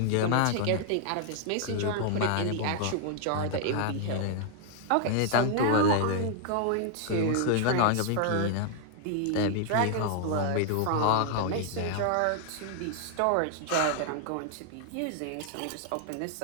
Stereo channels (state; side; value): different; both; correlation 0.00